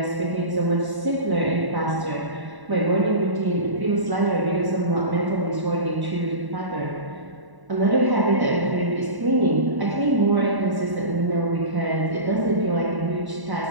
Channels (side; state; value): left; late; 1.1 ms